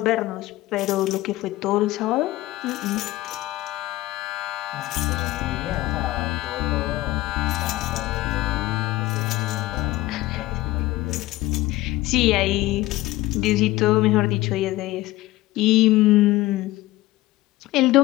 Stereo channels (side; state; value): right; quieter; 17.7 dB